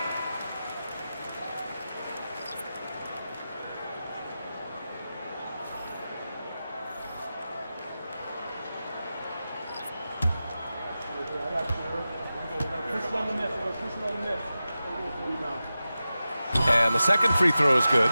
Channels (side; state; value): both; inverted; correlation -0.93